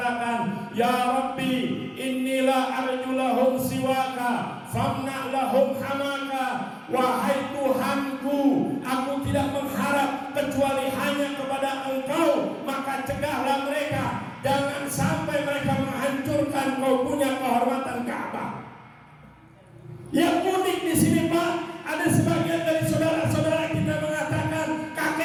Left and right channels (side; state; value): both; identical; correlation 1.00